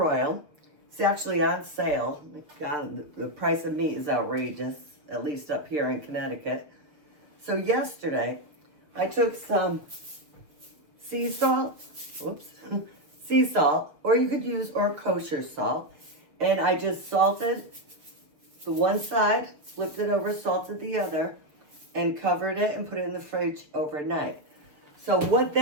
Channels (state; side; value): late; left; 6.7 ms